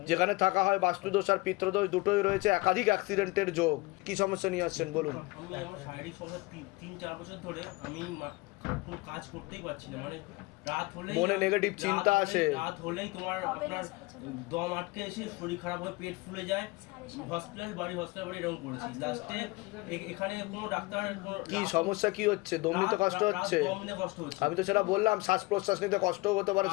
যেখানে থাকা হয় বাস্তুদোষ আর পিত্রদোষ দুটোই রয়েছে, একাধিক অ্যাক্সিডেন্টের যোগ। কি সমস্যা নিয়ে আসছেন বলুন? আমি আমার শারীরিক সমস্যা 3-4 বছর ধরে আমি কোনো কাজ করতেই পারছি না। মানে রাত হলেই মনে নেগেটিভ চিন্তা আসে, রাত হলেই আপনার দম আটকে এসে শরীর খারাপ হয়ে পেট ফুলে যায়। হসপিটাল বাড়ি এরকম করেছি। লাস্টে এখানে কোনো ডাক্তার কি সমস্যা কি হচ্ছে? দম নিতে কষ্ট হচ্ছে? আমি তো সেটা বললাম, শ্বাস প্রশ্বাস নিতে কষ্টও হতে পারে,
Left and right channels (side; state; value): right; quieter; 23.3 dB